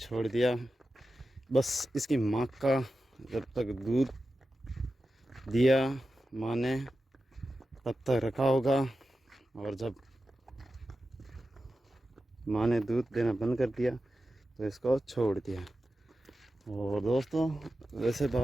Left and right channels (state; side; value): normal; both; correlation 0.92